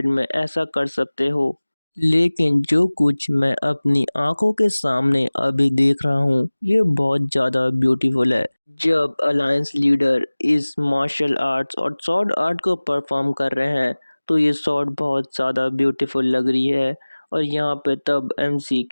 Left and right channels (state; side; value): inverted; both; correlation -1.00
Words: में ऐसा कर सकते हो? लेकिन जो कुछ मैं अपनी आंखों के सामने अभी देख रहा हूँ ये बहुत ज़्यादा ब्यूटीफुल है। जब अलायंस लीडर इस मार्शल आर्ट्स और स्वॉर्ड आर्ट को परफॉर्म कर रहे हैं तो ये स्वॉर्ड बहुत ज़्यादा ब्यूटीफुल लग रही है। और यहाँ पे तब एमसी